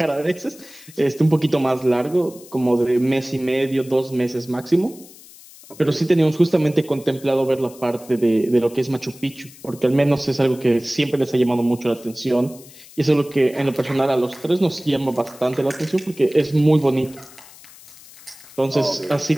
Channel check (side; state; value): left; noise; hiss, 21 dB below the sound